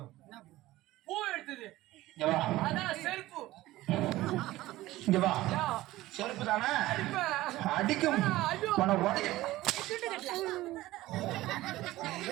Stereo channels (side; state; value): left; quieter; 17.0 dB